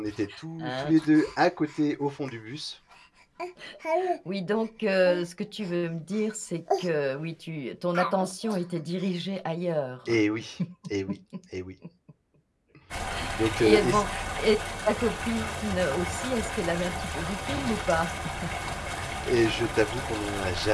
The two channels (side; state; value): both; identical; correlation 1.00